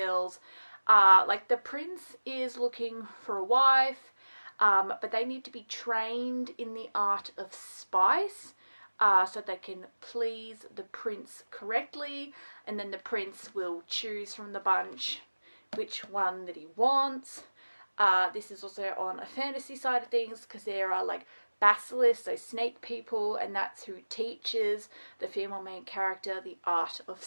The prince is looking for a wife, but they need to be trained in the art of spice, so they can please the prince correctly, and then the prince will choose from the bunch which one that he wants. This is also on a fantasy side of things because there are basilisks, so snake people, and that's who teaches the female main character the art of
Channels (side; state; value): both; inverted; correlation -1.00